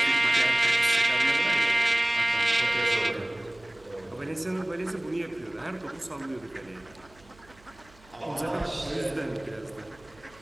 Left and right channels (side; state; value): right; noise; hum, 27 dB below the sound